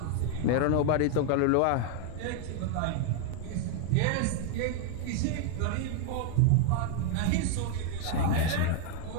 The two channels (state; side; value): different; both; correlation 0.00